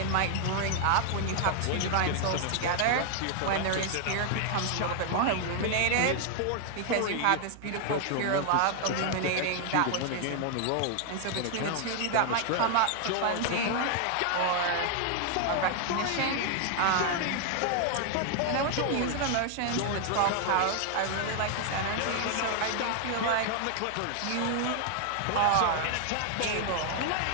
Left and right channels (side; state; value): both; different; correlation 0.00